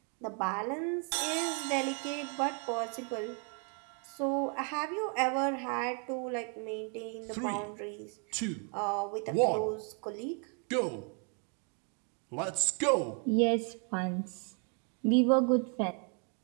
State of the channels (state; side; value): quieter; left; 39.2 dB